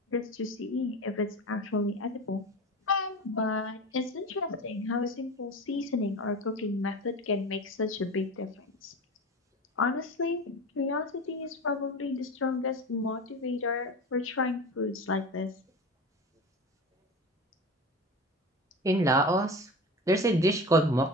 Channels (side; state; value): both; normal; correlation 0.30